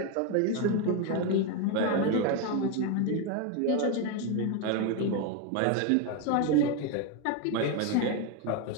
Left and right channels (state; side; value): different; both; correlation 0.02